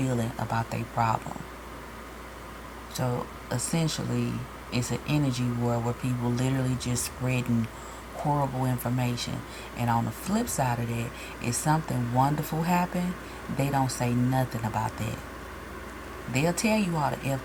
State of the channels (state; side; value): identical; both; correlation 1.00